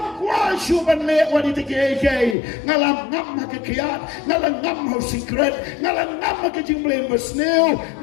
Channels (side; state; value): right; drops out; at 2.4 s